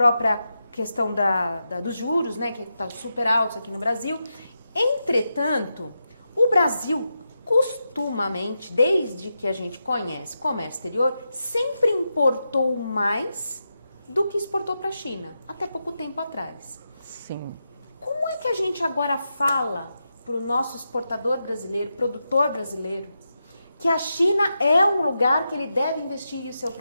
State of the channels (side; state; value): both; inverted; correlation -0.87